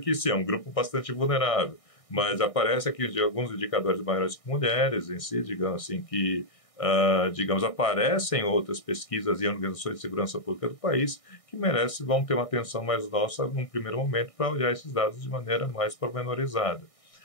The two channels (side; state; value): right; late; 1.6 ms